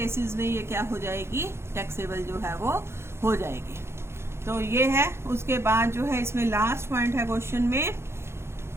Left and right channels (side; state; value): left; late; 0.12 ms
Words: में ये क्या हो जाएगी, टैक्सेबल जो है वो हो जाएगी। तो ये है। उसके बाद जो है इसमें लास्ट पॉइंट है क्वेश्चन में,